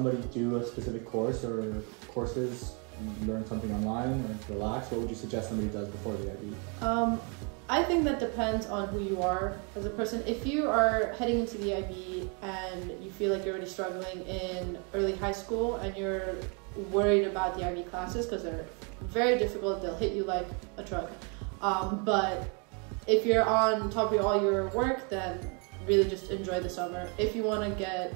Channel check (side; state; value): left; quieter; 35.6 dB